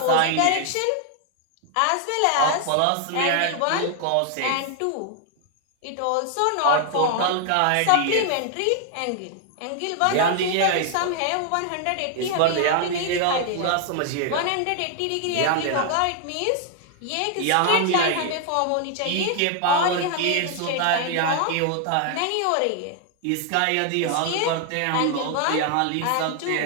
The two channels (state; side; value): different; both; correlation 0.00